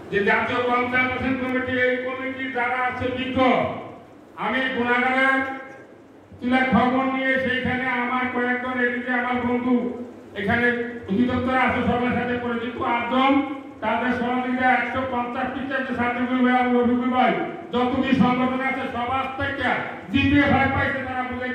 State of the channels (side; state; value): both; identical; correlation 1.00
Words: যে জাতীয় পঞ্চায়েত কমিটি এই কমিটি যারা আছে বিজ্ঞ, আমি গুণাগারের তুলে খবর নিয়ে সেইখানে আমার কয়েকজন এদিকে আমার বন্ধু এখানে অধিদপ্তর আছে সবার সাথে পরিচিত 8 জন, তাদের সহযোগিতা 150 টিচার যে সার্টিফিকেট ভাই রবিকুল ভাই যতটি সংগঠন আছে সবার থেকে জিপিএ ভাই পাইছে, তারা